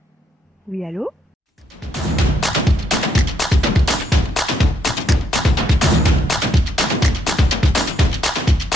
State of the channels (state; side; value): normal; both; correlation 0.74